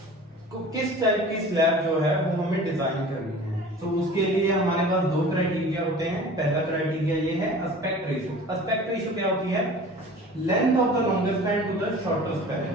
किस टाइप की स्लैब जो है वो हमें डिजाइन करनी है। तो उसके लिए हमारे पास दो क्राइटेरिया होते हैं। पहला क्राइटेरिया ये है एस्पेक्ट रेशियो। एस्पेक्ट रेशियो क्या होती है? Length of the longest span to the shortest span.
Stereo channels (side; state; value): both; normal; correlation 0.42